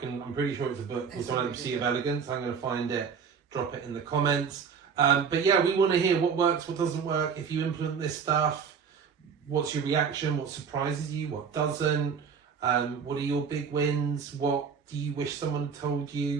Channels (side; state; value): left; quieter; 6.4 dB